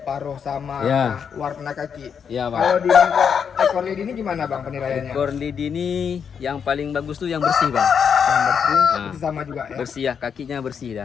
paruh sama Ya. warna kaki. Ya bang. Kalau di ekor lidi ini gimana bang penilaiannya? Ekor lidi ini yang paling bagus tuh yang bersih bang. Yang bersih itu sama juga ya. Bersih ya, kakinya bersih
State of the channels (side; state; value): right; quieter; 7.1 dB